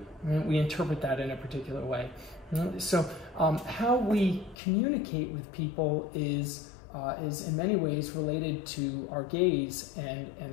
right, we interpret that in a particular way. So how we communicate with people is in many ways related to our gaze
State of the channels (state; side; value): drops out; right; at 4.5 s